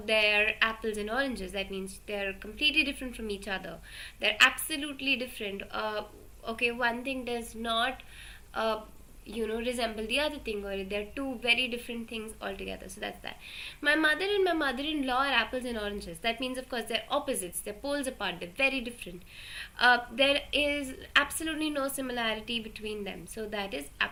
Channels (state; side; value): identical; both; correlation 1.00